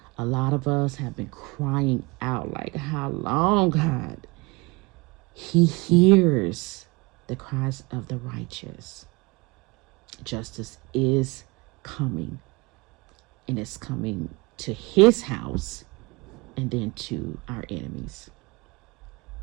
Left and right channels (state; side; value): quieter; left; 25.5 dB